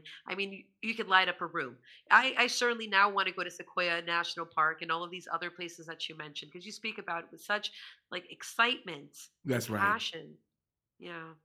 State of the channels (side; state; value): both; identical; correlation 1.00